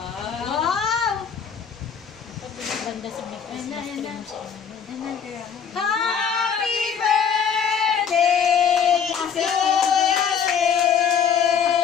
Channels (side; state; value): right; quieter; 7.2 dB